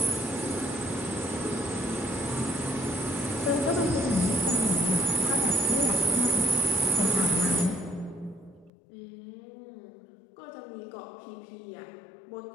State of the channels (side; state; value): right; drops out; at 8.7 s